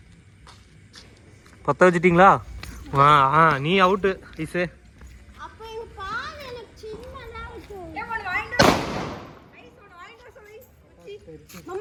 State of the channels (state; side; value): identical; both; correlation 1.00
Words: பத்த வச்சிட்டீங்களா? நீ அவுட்டு ஐசே. அப்ப இந்த பால் எனக்கு சின்னதா இருக்கு.